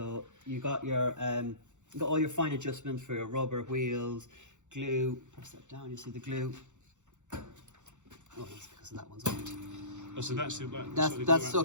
you got your you got all your fine adjustments for your rubber wheels, glue. Press that down. You see the glue. Oh, that's because that one's on it. Oh, so that's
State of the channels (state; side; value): late; left; 0.85 ms